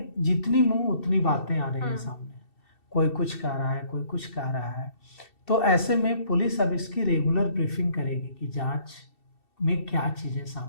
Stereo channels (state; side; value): late; right; 2.7 ms